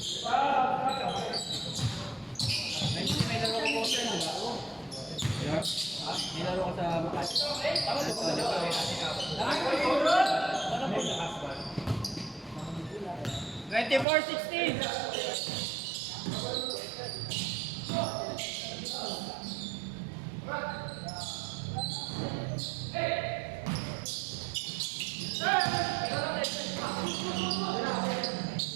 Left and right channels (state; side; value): drops out; left; at 14.1 s